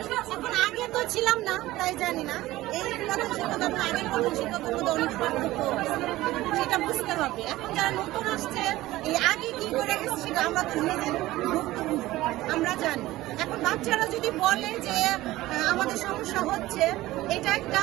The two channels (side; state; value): left; quieter; 17.1 dB